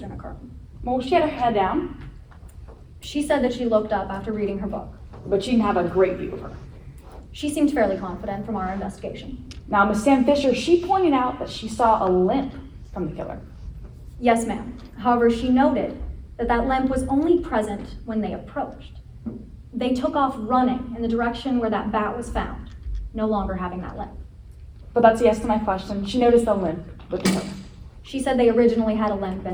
occurring. Well, she had her head down, She said that she looked up after reading her book. but she didn't have a great view of her. She seemed fairly confident from our investigation. Now, Miss Sam Fisher, she pointed out that she saw a limp from the killer. Yes, ma'am. However, she noted that limp was only present when they approached. They took off running in the direction where that bat was found, no longer having that limp. But that's a yes to my question. She noticed the limp with the tow. She said they originally had a limp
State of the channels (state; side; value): identical; both; correlation 1.00